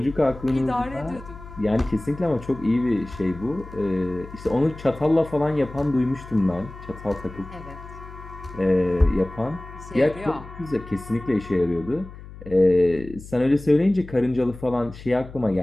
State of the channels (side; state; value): left; noise; hum, 15 dB below the sound